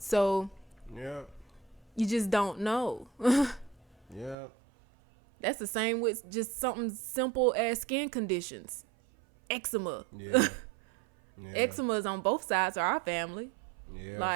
yeah, you just don't know. Yeah. That's the same with just something simple as skin conditions. Eczema. Yeah. Yeah. Eczema is on both sides of our family. Yeah.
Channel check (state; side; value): drops out; left; at 4.4 s